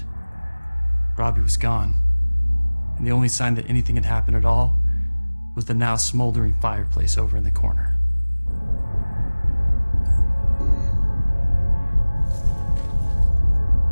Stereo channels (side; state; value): both; inverted; correlation -1.00